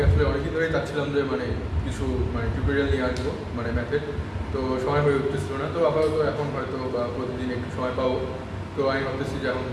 আসলে অনেকদিন ধরেই চাচ্ছিলাম যে কিছু টিউটোরিয়াল নিয়ে আসবো ম্যাথের। তো সময় হয়ে উঠতেছিল না, তো আপাতত এখন হয়তো বা প্রতিদিন একটু সময় পাবো। তো আমি ভাবতেছি যে এখন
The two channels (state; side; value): identical; both; correlation 1.00